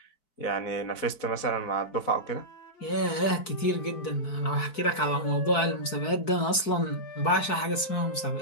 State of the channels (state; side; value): late; right; 4.6 ms